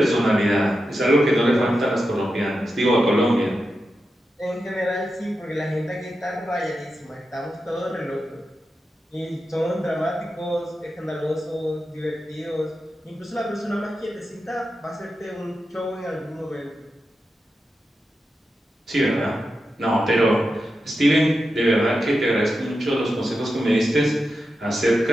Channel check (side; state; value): both; normal; correlation 0.89